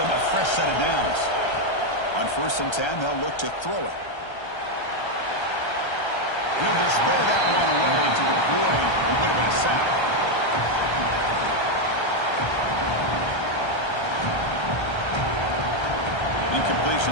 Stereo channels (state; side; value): late; right; 1.3 ms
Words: a fresh set of downs. On 1st and 10, they'll look to throw it. He'll just throw that one away to avoid what would have been a sack.